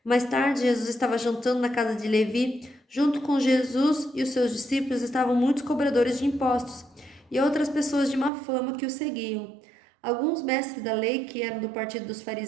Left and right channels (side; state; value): left; drops out; at 8.3 s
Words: Mais tarde, Jesus estava jantando na casa de Levi. Junto com Jesus e os seus discípulos estavam muitos cobradores de impostos e outras pessoas de má fama que o seguiam. Alguns mestres da lei, que eram do partido dos